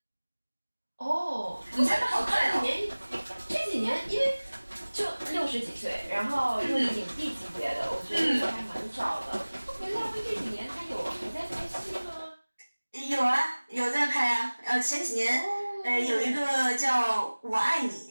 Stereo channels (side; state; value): both; inverted; correlation -1.00